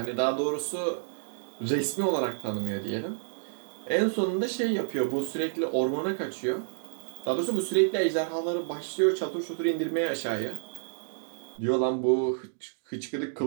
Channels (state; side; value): silent; left; digital silence